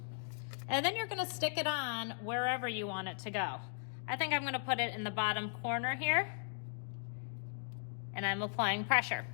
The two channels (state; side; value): silent; right; digital silence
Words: And then you're gonna stick it on wherever you want it to go. I think I'm gonna put it in the bottom corner here. And I'm applying pressure.